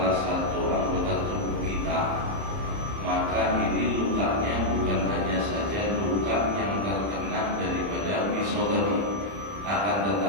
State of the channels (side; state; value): left; late; 30 ms